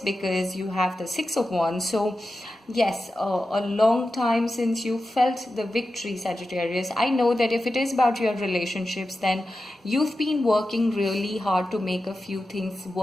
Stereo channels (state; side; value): normal; both; correlation 0.92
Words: you have the Six of Wands. So yes, a long time since you felt the victory, Sagittarius. I know that if it is about your relationships, then you've been working really hard to make a few things